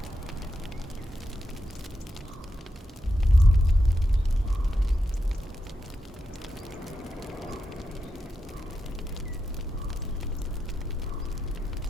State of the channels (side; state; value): both; normal; correlation 0.86